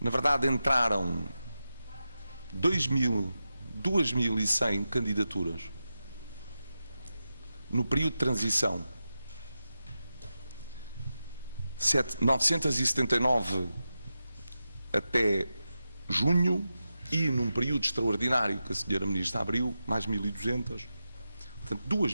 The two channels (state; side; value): inverted; both; correlation -0.91